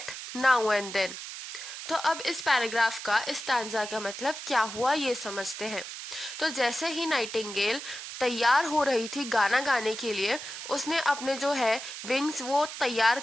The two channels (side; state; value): right; noise; hiss, 9 dB below the sound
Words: now and then." तो अब इस पैराग्राफ का इस स्टैंजा का मतलब क्या हुआ ये समझते हैं। तो जैसे ही नाइटिंगेल तैयार हो रही थी गाना गाने के लिए, उसने अपने जो है विंग्स वो तैयार